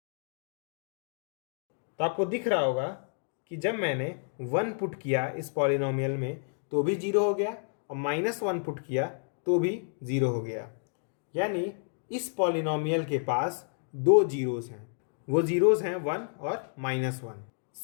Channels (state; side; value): silent; right; digital silence